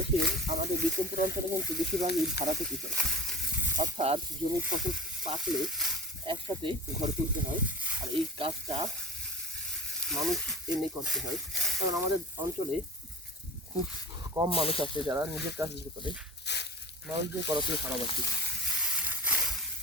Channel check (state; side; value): normal; both; correlation 0.36